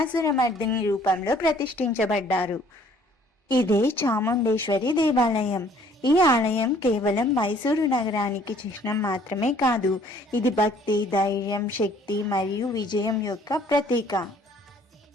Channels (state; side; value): normal; both; correlation 0.58